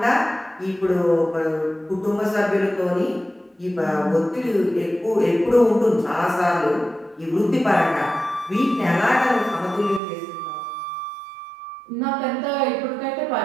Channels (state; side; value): drops out; left; at 10.0 s